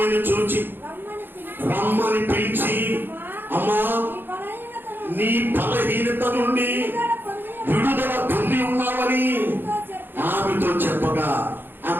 చూచి రమ్మని పిలిచి, అమ్మా నీ బలహీనత నుండి విడుదల పొంది ఉన్నావని ఆమెతో చెప్పగా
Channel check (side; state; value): left; late; 0.098 ms